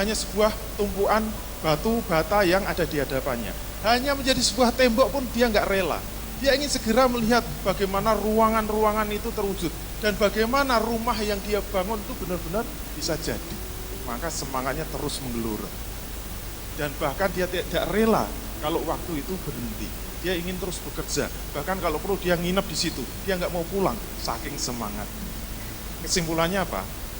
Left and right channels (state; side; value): identical; both; correlation 1.00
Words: sebuah tumpuan batu bata yang ada di hadapannya. Hanya menjadi sebuah tembok pun dia nggak rela. Dia ingin segera melihat bagaimana ruangan-ruangan itu terwujud. Dan bagaimana rumah yang dia bangun itu benar-benar bisa jadi. Maka semangatnya terus menggelora. Dan bahkan dia tidak rela kalau waktu itu berhenti. Dia ingin terus bekerja. Bahkan kalau perlu dia nginep di situ. Dia nggak mau pulang, saking semangat. Kesimpulannya apa?